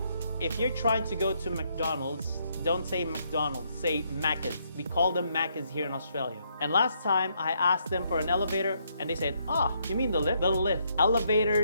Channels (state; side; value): inverted; both; correlation -0.74